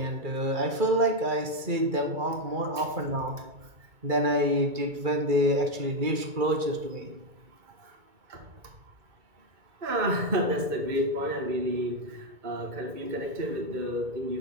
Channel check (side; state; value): left; late; 2.2 ms